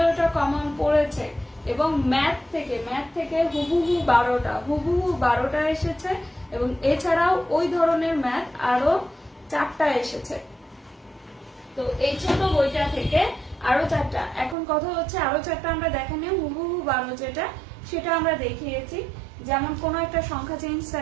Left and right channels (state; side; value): drops out; left; at 14.6 s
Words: কমন পড়েছে এবং ম্যাথ থেকে হুবহু 12টা এসেছে এবং এছাড়াও ওই ধরনের ম্যাথ আরো 4টা এসেছে। তো এই ছোট বইটা থেকে আরো 4টা, এখন কথা হচ্ছে আরো 4টা আমরা দেখানি, হুবহু 12 যেটা সেটা আমরা দেখিয়েছি। যেমন কোনো একটা সংখ্যা চেঞ্জ